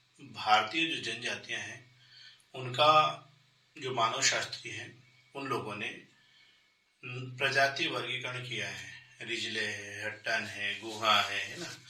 भारतीय जो जनजातियां हैं उनका जो मानव शास्त्री है उन लोगों ने प्रजाति वर्गीकरण किया है। रिजले है, हट्टन है, गुहा है ना।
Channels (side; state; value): both; identical; correlation 1.00